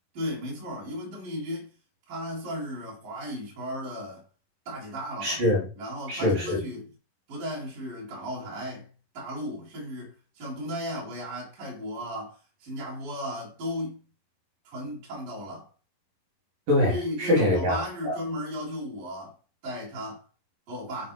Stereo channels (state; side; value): late; left; 11 ms